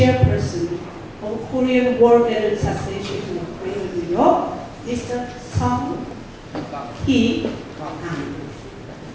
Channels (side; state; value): both; identical; correlation 1.00